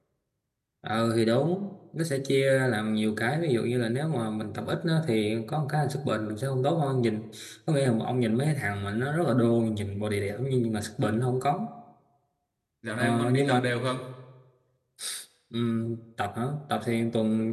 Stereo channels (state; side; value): identical; both; correlation 1.00